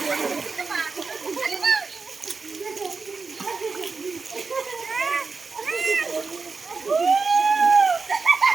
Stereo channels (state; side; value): quieter; left; 4.4 dB